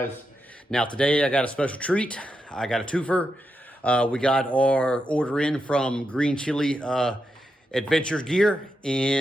Now, today I got a special treat. I got a twofer. We got our order in from Green Chile Adventures Gear,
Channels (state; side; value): normal; both; correlation 0.85